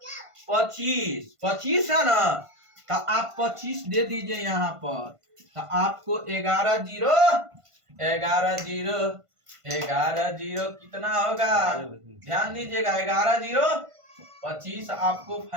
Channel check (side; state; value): left; late; 1.5 ms